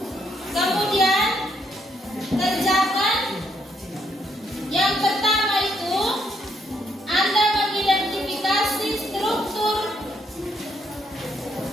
kemudian kerjakan yang pertama itu Anda mengidentifikasi struktur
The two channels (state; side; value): normal; both; correlation 0.74